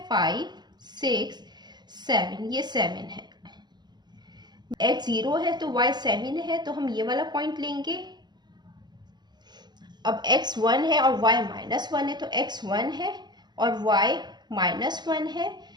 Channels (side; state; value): left; late; 0.21 ms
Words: 5 6 7, ये 7 है। x 0 है तो y 7 है, तो हम ये वाला पॉइंट लेंगे। अब x 1 है और y -1 है, तो x 1 है और y -1 है।